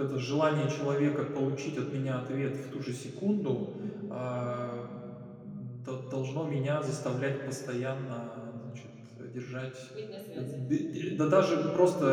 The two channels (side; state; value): both; identical; correlation 1.00